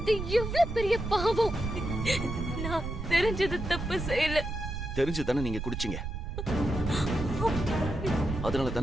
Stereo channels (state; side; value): noise; right; rumble, 5 dB below the sound